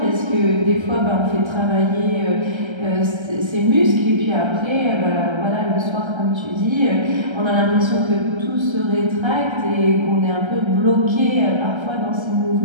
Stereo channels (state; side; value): late; left; 1.3 ms